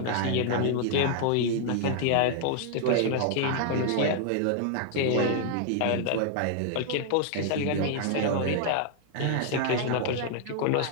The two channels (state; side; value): different; both; correlation 0.00